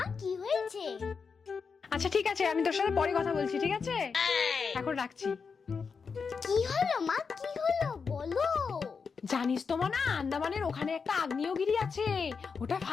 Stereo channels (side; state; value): right; quieter; 5.5 dB